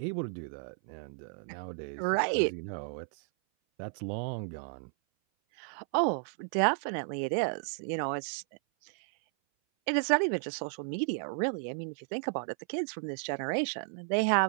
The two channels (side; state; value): left; silent; 56 dB below the other